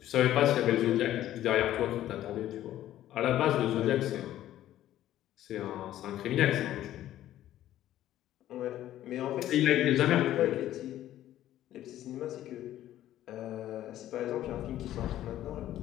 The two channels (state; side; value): quieter; right; 13.0 dB